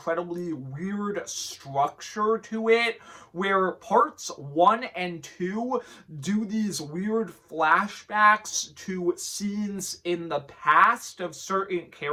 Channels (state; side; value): identical; both; correlation 1.00